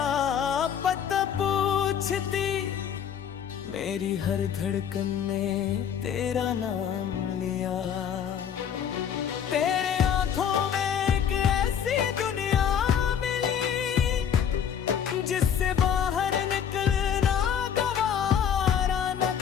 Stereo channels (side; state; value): right; quieter; 8.4 dB